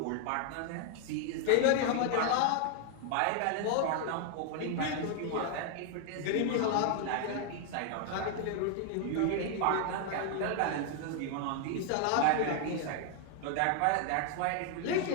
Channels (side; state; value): both; different; correlation 0.00